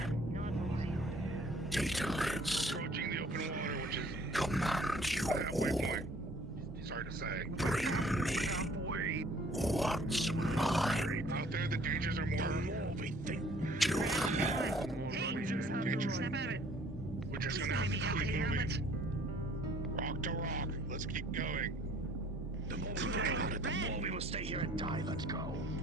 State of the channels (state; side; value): normal; both; correlation 0.56